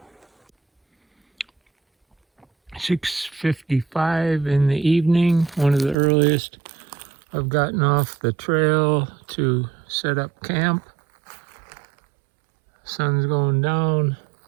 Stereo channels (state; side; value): drops out; left; at 6.0 s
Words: 6:55 in the evening, one of the earliest I've gotten off the trail to set up camp. Sun's going down.